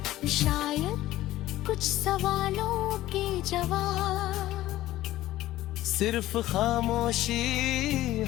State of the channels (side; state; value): right; quieter; 15.4 dB